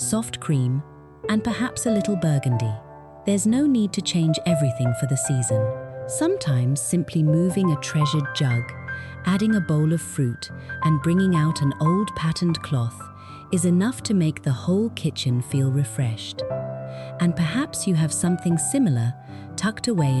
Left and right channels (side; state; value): both; identical; correlation 1.00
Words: cream, and perhaps a little burgundy. There's no need to change everything for the season. Sometimes simply moving a treasured jug, adding a bowl of fruit, and bringing out an old patterned cloth is enough to make the whole kitchen feel refreshed. And perhaps you have something similar tucked away